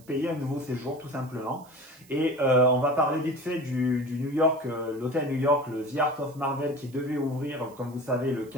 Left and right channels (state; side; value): noise; right; hiss, 26 dB below the sound